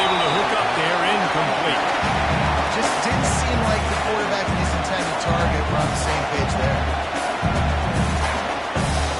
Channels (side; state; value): both; identical; correlation 1.00